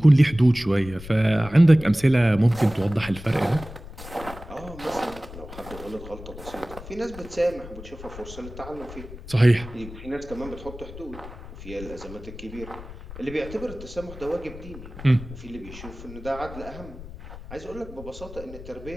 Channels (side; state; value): left; noise; rumble, 14 dB below the sound